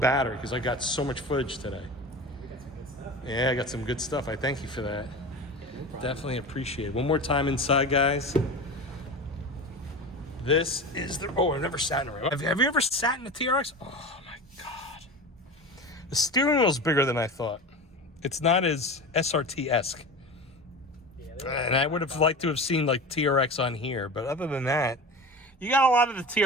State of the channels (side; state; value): both; normal; correlation 0.30